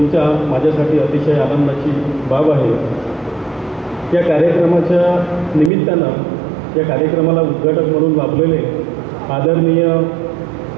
माझ्यासाठी अतिशय आनंदाची बाब आहे। या कार्यक्रमाच्या निमित्तानं या कार्यक्रमाला उद्घाटक म्हणून लाभलेले आदरणीय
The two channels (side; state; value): left; drops out; at 5.7 s